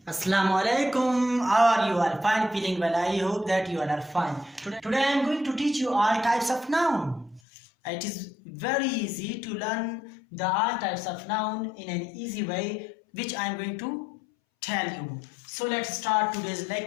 Assalamu alaikum. How are you all? Fine, feeling well. I hope that you all are fine. Today I am going to teach you all types of noun. It is very easy to learn the all types of noun in an easy way, which I am going to tell you. So let's start today's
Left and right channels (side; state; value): right; drops out; at 7.4 s